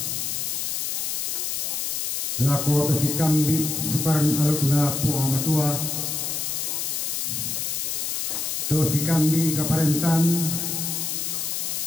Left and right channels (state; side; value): noise; left; hiss, 1 dB below the sound